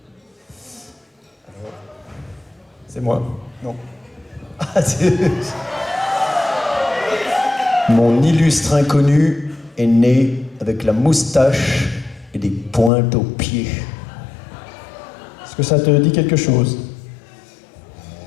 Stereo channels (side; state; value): right; drops out; at 12.9 s